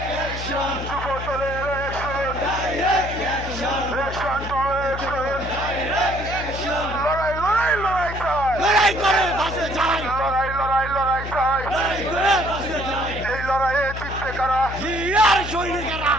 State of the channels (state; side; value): noise; left; hum, 8 dB below the sound